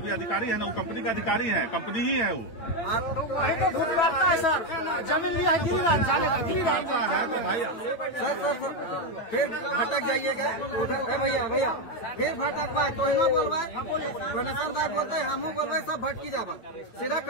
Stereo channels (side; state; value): right; late; 8.8 ms